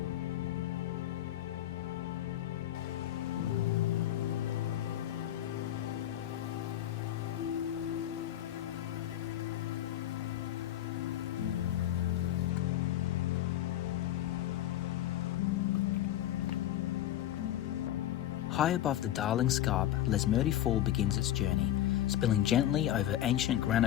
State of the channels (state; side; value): quieter; right; 12.5 dB